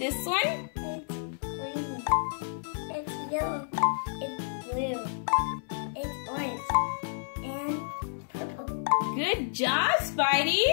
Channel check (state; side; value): silent; right; digital silence